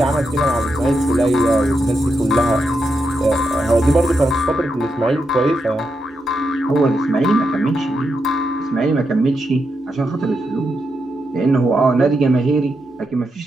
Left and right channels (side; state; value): both; normal; correlation 0.84